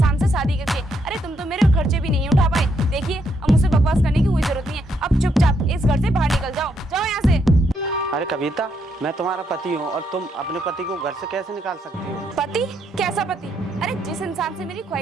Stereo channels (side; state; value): both; normal; correlation 0.75